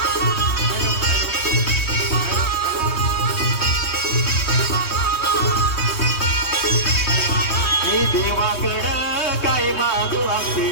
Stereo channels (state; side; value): late; right; 3.2 ms